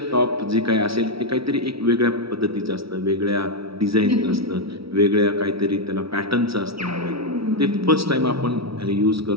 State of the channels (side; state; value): left; late; 0.76 ms